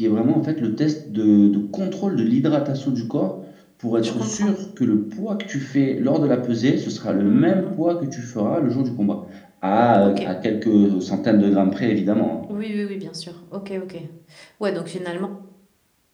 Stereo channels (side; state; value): both; identical; correlation 1.00